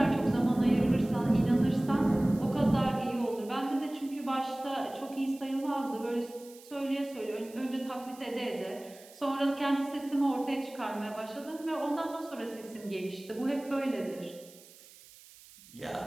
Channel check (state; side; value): noise; right; hiss, 22 dB below the sound